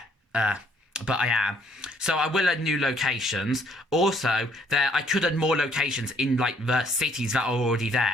but I am. So I will add new locations. Also, I could add more locations in like the cities that are already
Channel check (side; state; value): both; normal; correlation 0.65